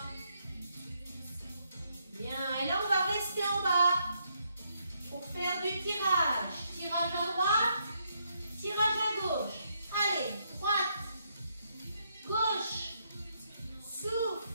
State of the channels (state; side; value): inverted; both; correlation -0.76